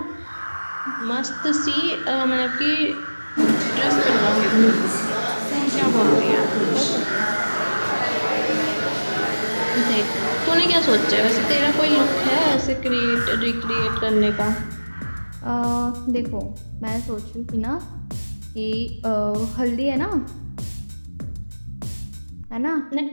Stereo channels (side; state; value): both; inverted; correlation -1.00